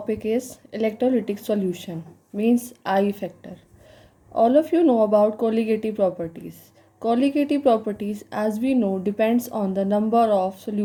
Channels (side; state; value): both; identical; correlation 1.00